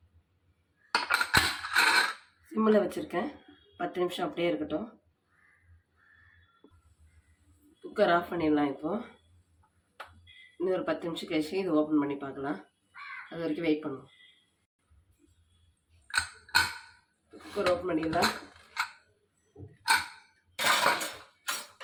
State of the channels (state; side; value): identical; both; correlation 1.00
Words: சிம்மில் வச்சுருக்கேன். 10 நிமிஷம் அப்படியே இருக்கட்டும். குக்கர் ஆஃப் பண்ணிடலாம். இப்போது இன்னும் ஒரு 10 நிமிஷம் கழிச்சு இது ஓப்பன் பண்ணி பார்க்கலாம். அது வரைக்கும் வெயிட் பண்ணுவோம். குக்கர் ஓப்பன் பண்ணிடலாம்.